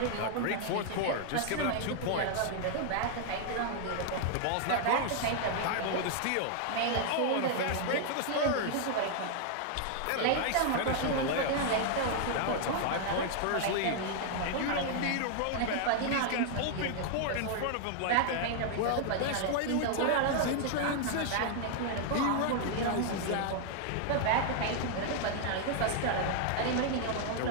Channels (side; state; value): both; different; correlation 0.00